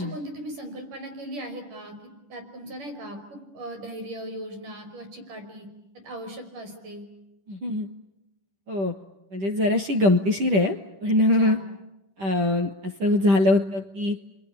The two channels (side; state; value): left; late; 10 ms